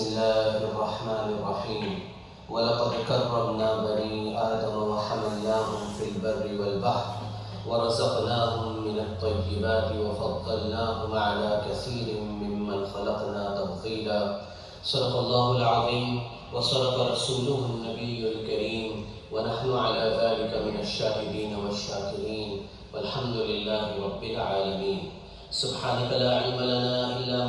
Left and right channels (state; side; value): identical; both; correlation 1.00